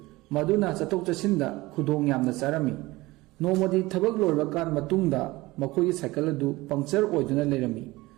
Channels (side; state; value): left; quieter; 20.2 dB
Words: मदुना चतोक चसिंदा खुदोंग यामना चारमी नोमदी थबक लोरबा कान मतुंगदा मखोगी साइकल अदु पंक्चर ओइदुना लेरमी